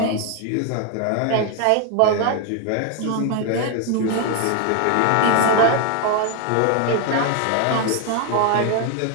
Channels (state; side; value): different; both; correlation 0.01